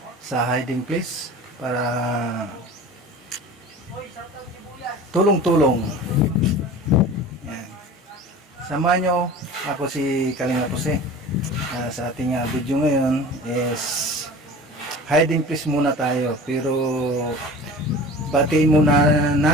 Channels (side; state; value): both; normal; correlation 0.38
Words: sa hiding place para tulong-tulong. Yan. Samahan nyo, ako si Kalinga Jose. Sa ating video ngayon is hiding place muna tayo, pero batiin muna